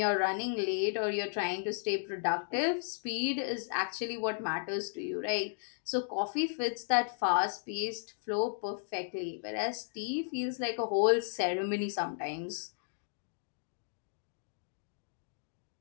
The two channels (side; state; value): right; silent; digital silence